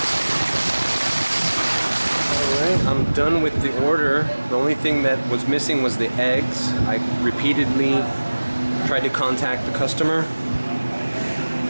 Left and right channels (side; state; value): both; inverted; correlation -1.00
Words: I'm done with the order. The only thing that was missing was the eggs. I repeatedly tried to contact the customer.